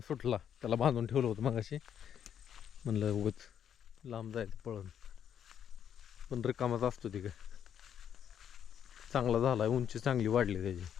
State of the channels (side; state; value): right; quieter; 9.0 dB